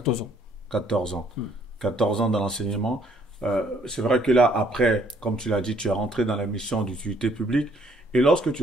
ans. 14 ans. 14 ans dans l'enseignement. C'est vrai que là, après, comme tu l'as dit, tu es rentré dans la mission d'utilité publique. Et lorsque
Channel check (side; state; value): both; normal; correlation 0.64